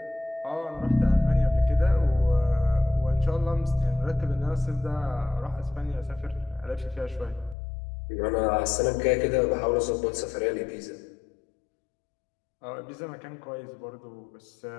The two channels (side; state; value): right; drops out; at 7.6 s